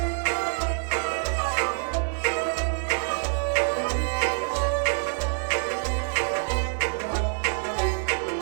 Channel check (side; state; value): left; silent; 61 dB below the other